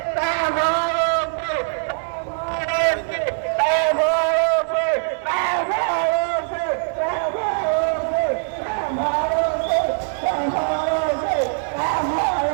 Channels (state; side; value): silent; left; 64 dB below the other